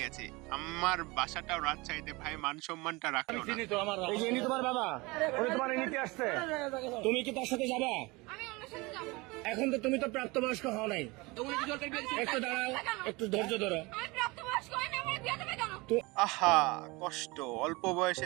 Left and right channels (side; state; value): left; quieter; 24.2 dB